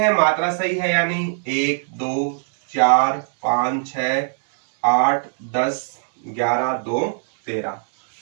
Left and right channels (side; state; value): left; silent; 65 dB below the other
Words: मात्रा सही है या नहीं। 1, 2, 4, 5, 6, 8, 10, 11, 2, 13।